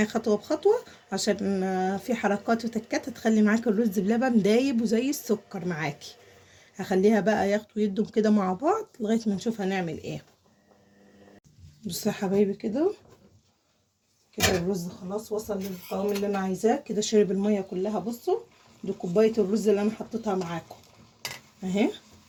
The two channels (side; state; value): both; identical; correlation 1.00